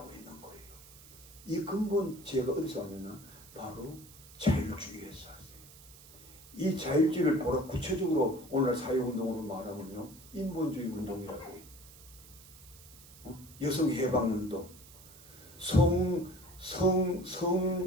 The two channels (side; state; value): right; noise; hiss, 20 dB below the sound